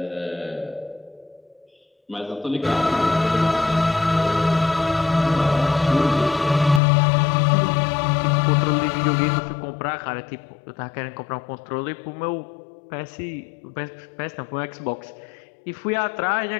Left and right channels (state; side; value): drops out; right; at 6.8 s